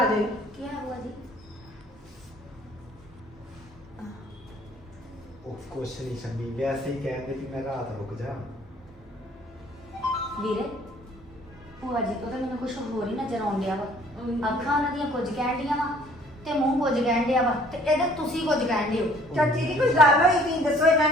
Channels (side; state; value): both; normal; correlation 0.57